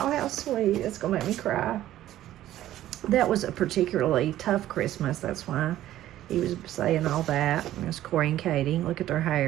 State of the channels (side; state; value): left; quieter; 13.5 dB